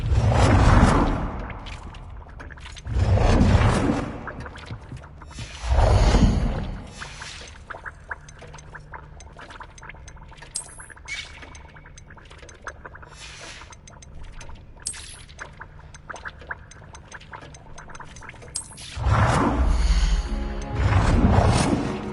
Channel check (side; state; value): both; identical; correlation 1.00